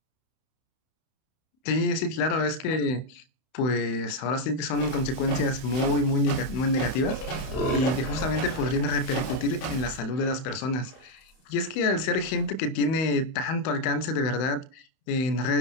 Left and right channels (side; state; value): right; late; 31 ms